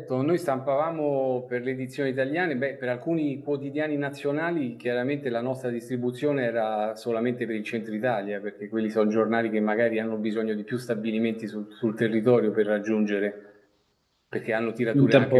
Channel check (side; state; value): both; identical; correlation 1.00